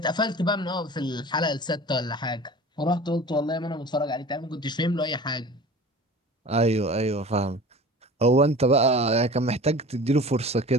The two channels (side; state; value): both; normal; correlation 0.40